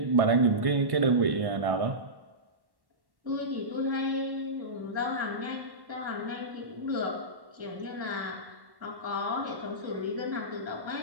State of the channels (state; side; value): late; left; 1.1 ms